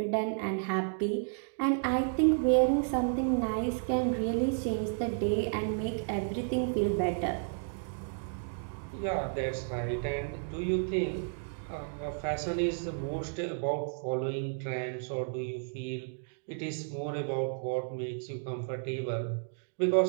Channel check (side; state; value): left; silent; digital silence